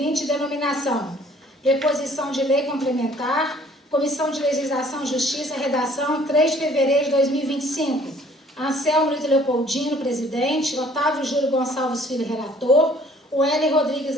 denominação: Preposição de lei complementar, Comissão de Legislação e Justiça, redação 3 de fevereiro de 2025. Anselmo Ito Leopoldino, presidente. Otávio Júlio Gonçalves Filho, relator. O Hélio Rodrigues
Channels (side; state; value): both; normal; correlation 0.57